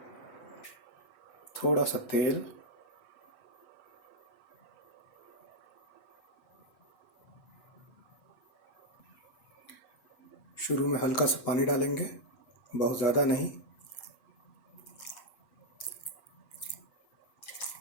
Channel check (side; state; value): right; late; 8.1 ms